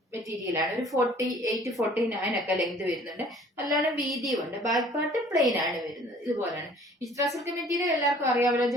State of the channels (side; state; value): both; normal; correlation 0.53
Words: മെറ്റീരിയൽ ആണ്. ഒരു 48-49 ഒക്കെ ലെങ്ത് വരുന്നുണ്ട്. നല്ലോണം വീതിയും ഉണ്ട്. ബാക്ക് പാർട്ട് പ്ലെയിൻ ആണ് വരുന്നത്. ഇതുപോലെയാണ്. വിചിത്ര സിൽക്ക് മെറ്റീരിയൽ എല്ലാവർക്കും അറിയാമല്ലോ.